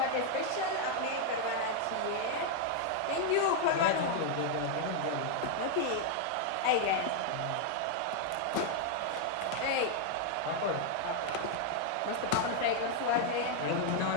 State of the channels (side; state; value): both; different; correlation 0.00